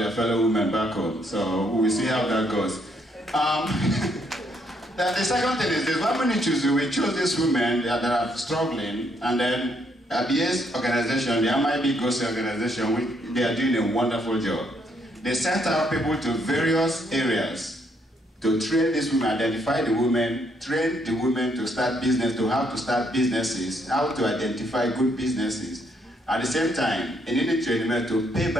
fellow women back home. So we'll see how that goes. The second thing is this: when we choose these women that are struggling, and then at the ACE organization, the MIB GOSI organization, they are doing a wonderful job. They sent out people to various areas to train these women, identify the women, train the women to start business, to how to start businesses, how to identify good businesses. At the same time, they need training to pay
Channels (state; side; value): normal; both; correlation 0.72